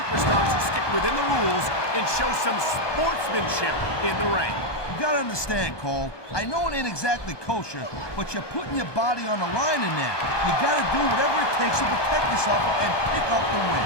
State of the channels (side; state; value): right; late; 1.2 ms